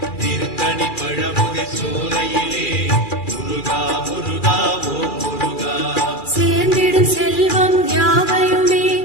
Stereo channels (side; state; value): right; late; 2.4 ms